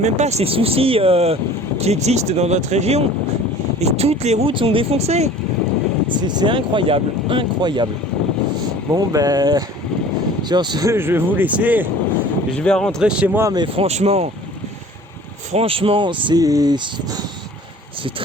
pas ces soucis qui existent dans notre région. Et toutes les routes sont défoncées. C'est incroyable. Incroyable. Bon, ben, sur ce, je vais vous laisser. Je vais rentrer chez moi, mais franchement, c'est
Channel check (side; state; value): both; normal; correlation 0.46